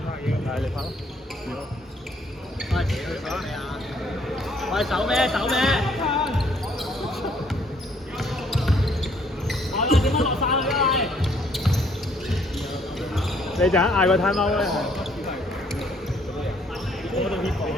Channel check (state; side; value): normal; both; correlation 0.65